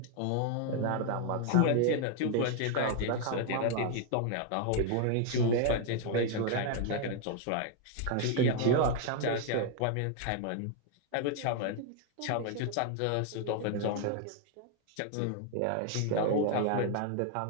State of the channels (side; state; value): both; different; correlation 0.00